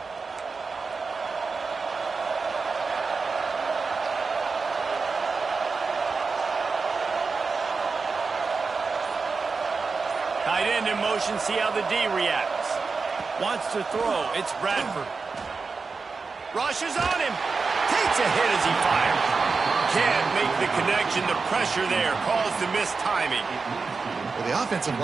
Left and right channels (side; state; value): left; quieter; 4.6 dB